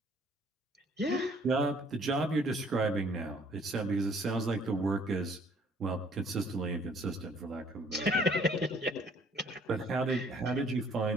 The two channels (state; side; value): normal; both; correlation 0.60